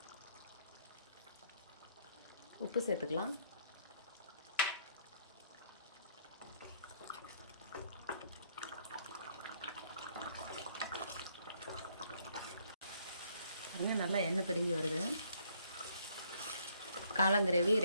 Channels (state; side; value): inverted; both; correlation -0.67